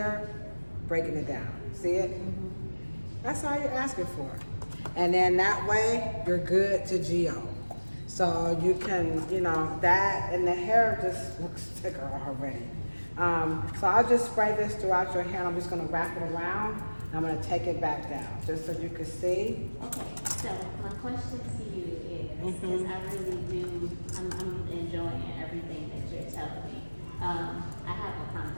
breaking it down. See it? That's all you're asking for. And then that way, you're good to GO. So you can, that, and the hair just looks thicker already. So I'll just spray this throughout your hair, and I'm just gonna wrap it around, and I'm gonna take it back down, just so you can see. Okay, so my question to you is, because I really do, I'm enjoying everything that you're telling me. I have a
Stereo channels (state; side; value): inverted; both; correlation -1.00